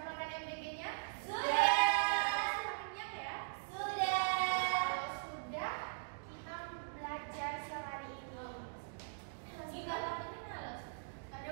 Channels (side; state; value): left; silent; digital silence